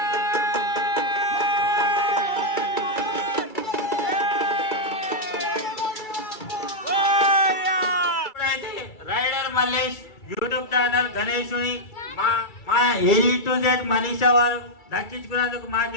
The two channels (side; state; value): right; late; 2.3 ms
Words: రైడర్ మల్లేష్ యూట్యూబ్ ఛానల్ గణేషుని మా A to Z మనీషా వారు దక్కించుకున్నందుకు మాకు